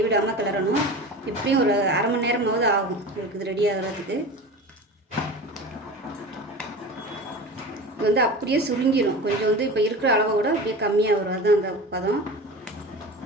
கிளறணும். இப்படியும் ஒரு 1/2 மணி நேரமாவது ஆகும் உங்களுக்கு இது ரெடி ஆகிறதுக்கு. இது வந்து அப்படியே சுருங்கிடும். கொஞ்சம் வந்து இப்போ இருக்கிற அளவை விட அப்படியே கம்மியாக வரும். அதுதான் அந்த பதம்.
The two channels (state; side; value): normal; both; correlation 0.32